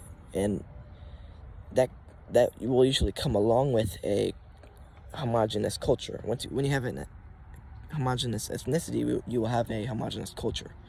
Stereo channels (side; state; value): both; identical; correlation 1.00